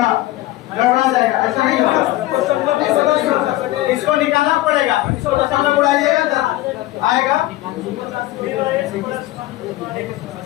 गड़बड़ा जाएगा, ऐसा नहीं होगा। इसको निकालना पड़ेगा, इसको दशमलव उड़ाइएगा तो आएगा।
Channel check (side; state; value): right; quieter; 17.2 dB